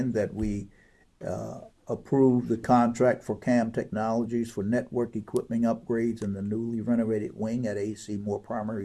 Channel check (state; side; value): identical; both; correlation 1.00